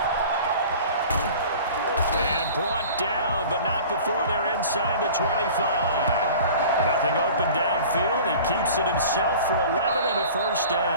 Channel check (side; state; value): both; inverted; correlation -0.42